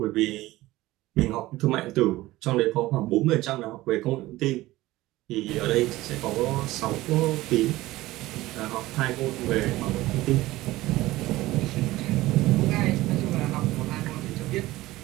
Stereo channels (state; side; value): quieter; left; 17.7 dB